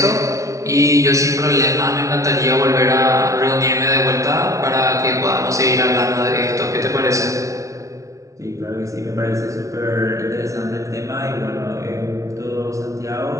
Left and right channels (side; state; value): left; late; 0.15 ms